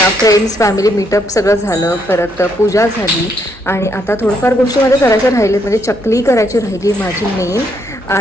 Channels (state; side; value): normal; both; correlation 0.74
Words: फ्रेंड्स फॅमिली मीटअप सगळं झालं, परत पूजा झाली आणि आता थोडंफार गोष्टी माझ्या करायच्या राहिले, म्हणजे चकली करायची राहिली माझी मेन,